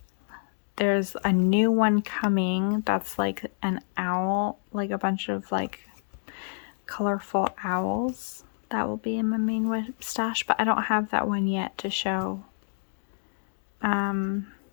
there's a new one coming that's like an owl, like a bunch of like colorful owls that will be in my main whip stash, but I don't have that one yet to show. And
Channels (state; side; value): silent; right; digital silence